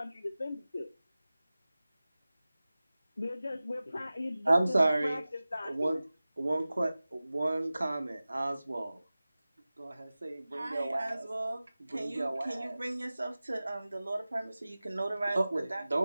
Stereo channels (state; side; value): inverted; both; correlation -0.97